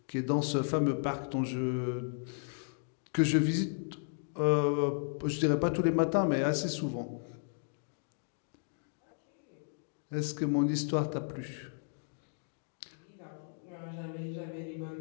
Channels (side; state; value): right; silent; digital silence